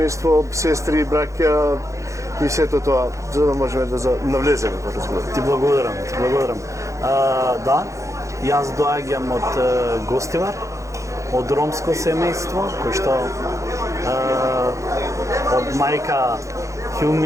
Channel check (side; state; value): left; late; 0.15 ms